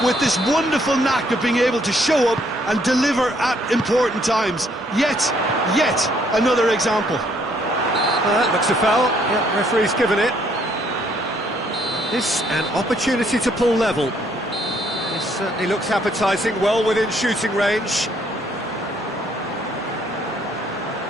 with this wonderful knack of being able to show up and deliver at important times. Yet another example. That looks a foul. Yeah, referee's given it. This an opportunity to pull level. This certainly looks appetising, well within shooting range.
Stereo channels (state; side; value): normal; both; correlation 0.67